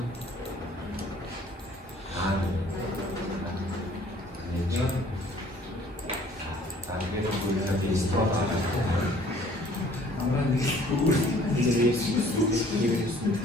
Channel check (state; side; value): normal; both; correlation 0.56